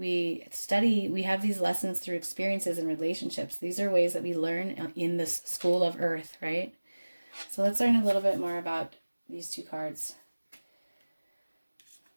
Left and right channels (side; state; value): both; inverted; correlation -1.00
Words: have these lessons through experiences and relationships. These are ways that we learn in this school of earth, right? So let's learn a little bit more about these 2 cards.